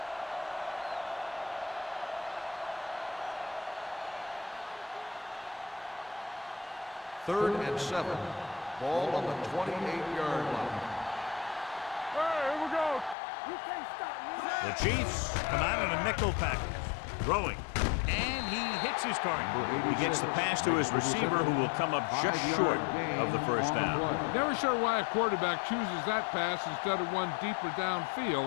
Third and 7. Ball on the 28-yard line. Hey, here we go. You can't stop me. The Chiefs come out in a nickel package, throwing, and he hits his target. He gets the pass to his receiver, who will come up just short of the first down. Never sure why a quarterback chooses that pass instead of one deeper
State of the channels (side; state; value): right; drops out; at 13.2 s